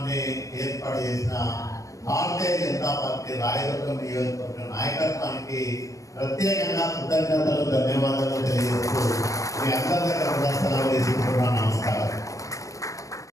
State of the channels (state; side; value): late; right; 0.16 ms